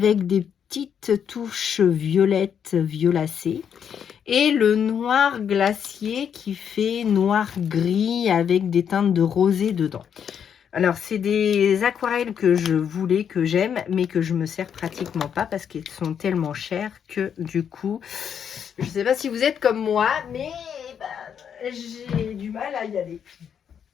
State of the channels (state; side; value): quieter; right; 8.0 dB